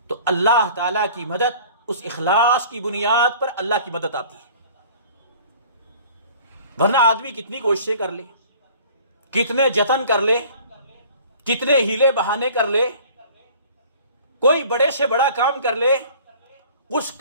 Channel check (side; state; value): both; inverted; correlation -0.48